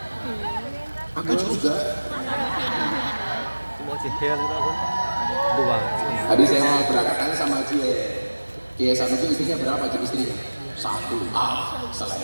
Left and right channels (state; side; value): inverted; both; correlation -1.00